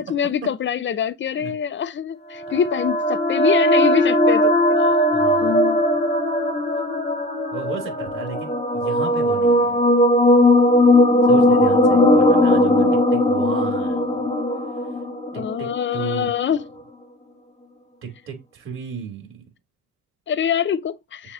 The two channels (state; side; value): normal; both; correlation 0.37